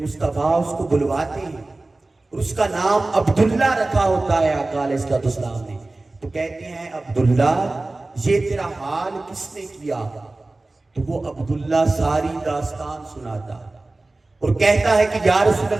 اس کو بلواتے ہیں اور اس کا نام عبداللہ رکھا ہوتا ہے آقا علیہ السلام نے۔ تو کہتے ہیں عبداللہ یہ تیرا حال کس نے کیا؟ تو وہ عبداللہ ساری داستان سناتا اور کہتا ہے کہ یا رسول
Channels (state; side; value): quieter; left; 3.0 dB